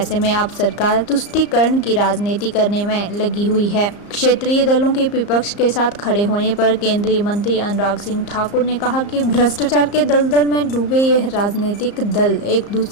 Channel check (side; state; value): right; late; 34 ms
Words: में अब सरकार तुष्टीकरण की राजनीति करने में लगी हुई है। क्षेत्रीय दलों के विपक्ष के साथ खड़े होने पर केंद्रीय मंत्री अनुराग सिंह ठाकुर ने कहा कि भ्रष्टाचार के दलदल में डूबे यह राजनीतिक दल एक